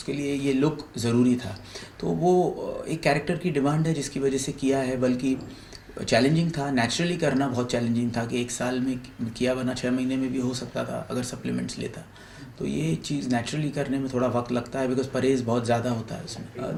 लिए ये लुक ज़रूरी था। तो वो एक कैरेक्टर की डिमांड है जिसकी वजह से किया है। बल्कि चैलेंजिंग था, नेचुरली करना बहुत चैलेंजिंग था कि एक साल में किया, वरना 6 महीने में भी हो सकता था अगर सप्लीमेंट्स लेता। तो ये चीज़ नेचुरली करने में थोड़ा वक्त लगता है, बिकॉज परहेज़ बहुत ज़्यादा होता है उसमें।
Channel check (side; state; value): both; identical; correlation 1.00